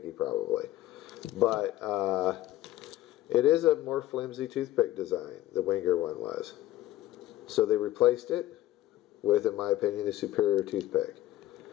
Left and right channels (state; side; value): quieter; right; 14.9 dB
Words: probably. But it is a more flimsy toothpick design, the Wenger one was. So they replaced it with, in my opinion, a superior toothpick.